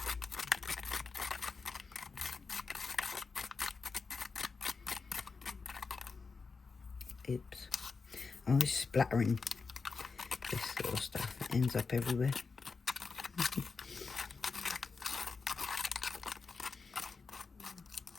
Oops, I'm always splattering this sort of stuff. It ends up everywhere.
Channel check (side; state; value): right; quieter; 4.6 dB